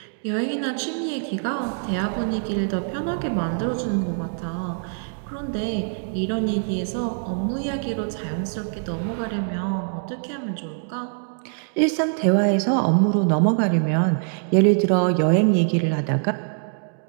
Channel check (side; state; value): left; silent; 63 dB below the other